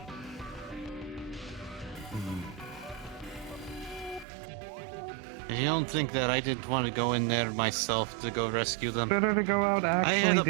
You don't think that I didn't want to go in there myself to go rescue them? Better to go out I actually had a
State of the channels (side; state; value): left; drops out; at 4.2 s